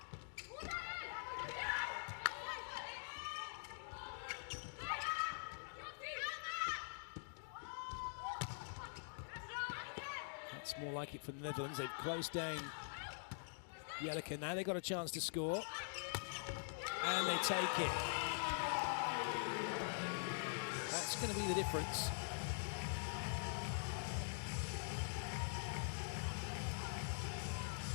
Looks more like it for the Netherlands. They've closed down Jellicoe. Now they've got a chance to score. And they take it. That's going to be the difference.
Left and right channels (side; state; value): right; silent; digital silence